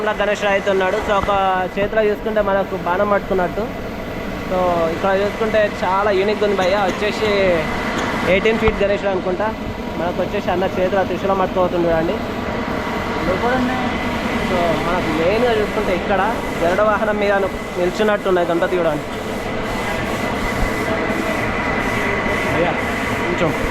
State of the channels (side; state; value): both; identical; correlation 1.00